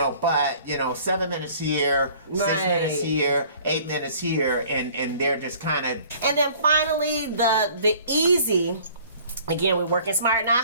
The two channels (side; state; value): both; inverted; correlation -0.52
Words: But 7 minutes here, 6 minutes here, 8 minutes here, and they're just kind of. And then finally, the easy. Again, we're working smart, not